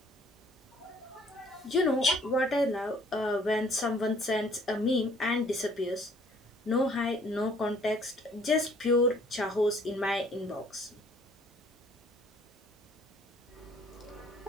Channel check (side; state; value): both; normal; correlation 0.58